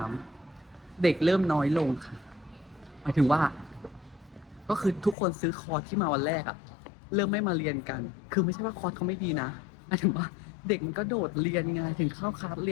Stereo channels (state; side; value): drops out; right; at 5.2 s